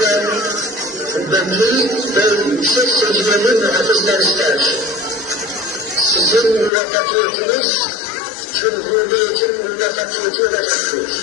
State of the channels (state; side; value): drops out; right; at 6.7 s